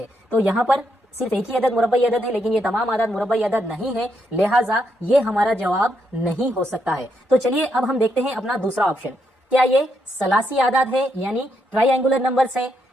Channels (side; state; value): both; normal; correlation 0.78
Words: तो यहाँ पर सिर्फ एक ही अदद मुरब्बई अदद है, लेकिन ये तमाम आदाद मुरब्बई अदद नहीं है, लिहाजा ये हमारा जवाब नहीं हो सकता है। तो चलिए अब हम देखते हैं अपना दूसरा ऑप्शन, क्या ये सलासी आदाद है यानी ट्राइएंगुलर नंबर्स हैं?